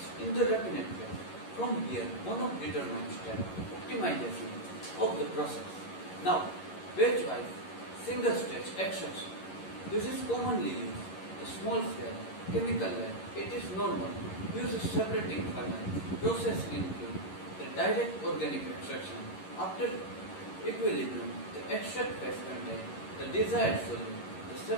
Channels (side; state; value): right; late; 11 ms